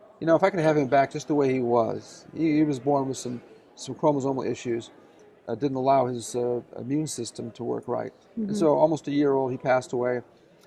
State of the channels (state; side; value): identical; both; correlation 1.00